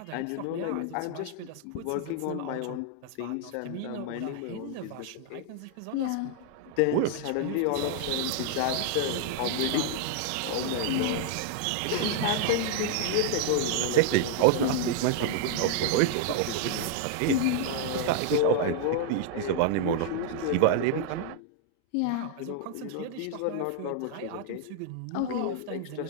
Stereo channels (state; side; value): different; both; correlation -0.01